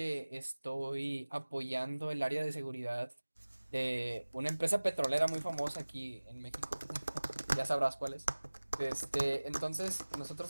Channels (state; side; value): inverted; both; correlation -1.00